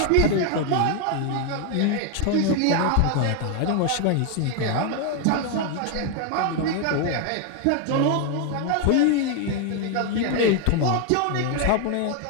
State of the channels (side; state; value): both; different; correlation 0.01